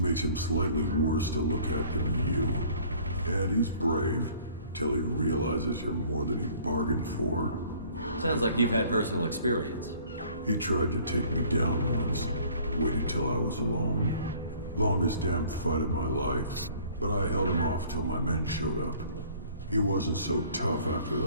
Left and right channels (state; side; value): inverted; both; correlation -0.54